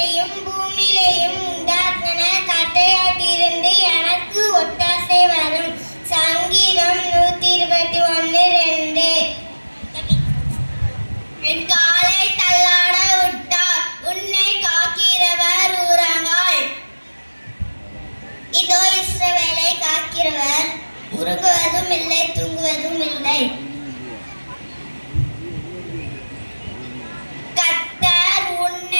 பூமியிலேயும் உண்டாக்கின கட்டையாட்டிருந்து எனக்கு ஒத்தாசை வரும். சங்கீதம் 121:2. என் காலை தள்ளாட விட்டார், உன்னை காக்கிறவர் உறங்காள். இதோ இஸ்ரவேலை காக்கிறவர் உறங்குவதும் இல்லை, தூங்குவதும் இல்லை. கர்த்தர்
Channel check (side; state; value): both; inverted; correlation -1.00